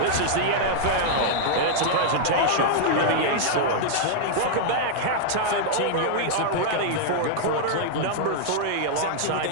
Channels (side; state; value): both; different; correlation -0.01